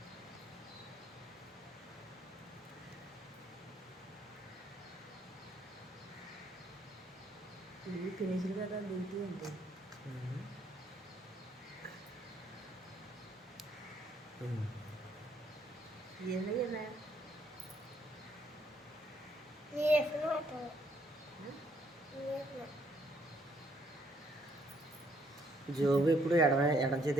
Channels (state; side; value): normal; both; correlation 0.69